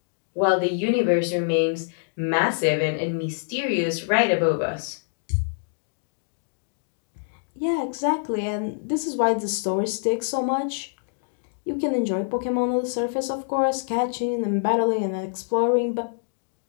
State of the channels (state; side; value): silent; right; digital silence